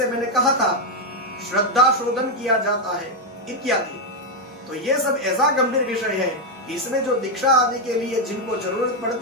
मैंने कहा था, श्रद्धा शोधन किया जाता है इत्यादि। तो यह सब ऐसा गंभीर विषय है कि इसमें जो दीक्षा आदि के लिए जिनको जरूरत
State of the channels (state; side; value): normal; both; correlation 0.03